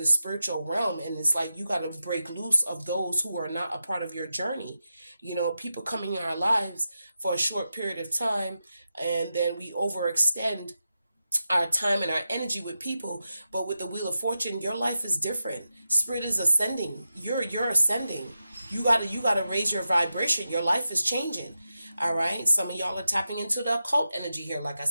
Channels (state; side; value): inverted; both; correlation -0.89